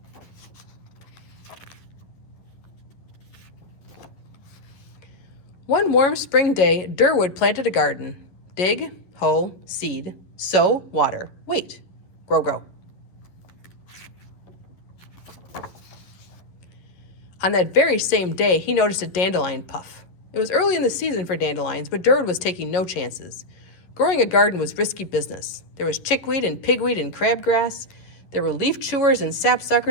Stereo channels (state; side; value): late; right; 11 ms